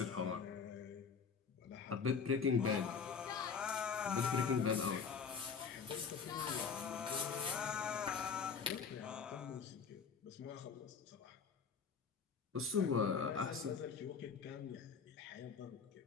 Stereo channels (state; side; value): quieter; right; 5.9 dB